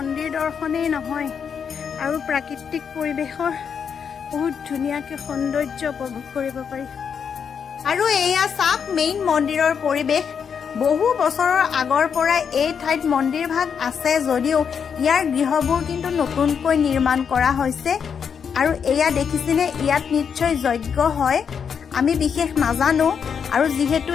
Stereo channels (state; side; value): quieter; right; 7.0 dB